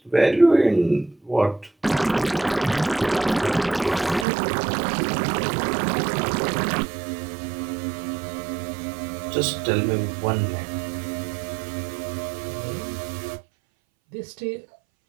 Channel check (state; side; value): drops out; left; at 4.2 s